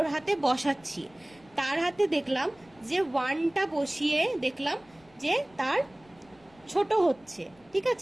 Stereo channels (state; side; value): noise; left; rumble, 29 dB below the sound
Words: হাতে বসাচ্ছি, তার হাতে দেখলাম যে 1টা বসিয়ে দেখলাম যে তার ছোট হচ্ছে, ঠিক